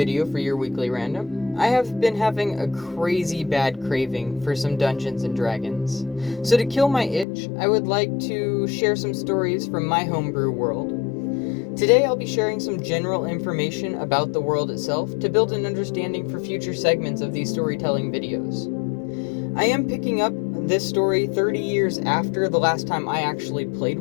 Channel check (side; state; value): right; drops out; at 7.2 s